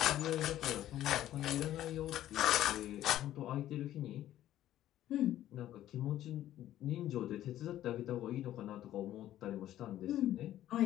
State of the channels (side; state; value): right; quieter; 12.9 dB